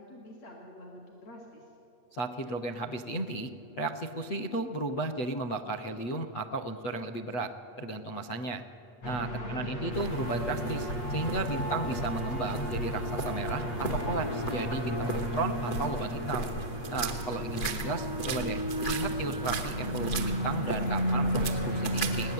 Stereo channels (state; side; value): late; right; 8.4 ms